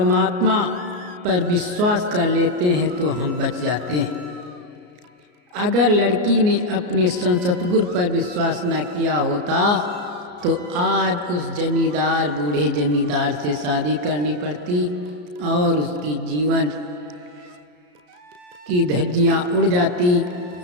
पर विश्वास कर लेते हैं तो हम बच जाते हैं। अगर लड़की ने अपने सतगुरु पर विश्वास न किया होता तो आज उस जमींदार बूढ़े जमींदार से शादी करनी पड़ती और उसकी जीवन की धज्जियाँ उड़ जाती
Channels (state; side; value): late; left; 33 ms